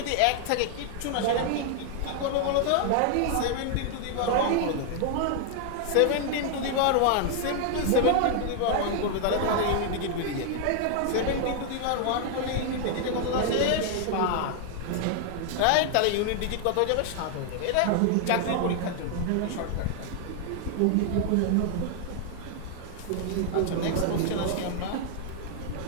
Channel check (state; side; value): different; both; correlation 0.00